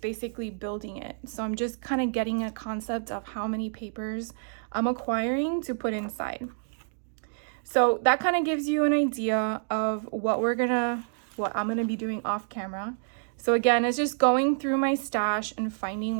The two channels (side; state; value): left; silent; digital silence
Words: basically building it. So I'm just kind of getting a concept of how many papers I'm acquiring to put inside. So that kind of gives you an idea of what I'm gonna be doing off camera. So again, it's just going through my stash and finding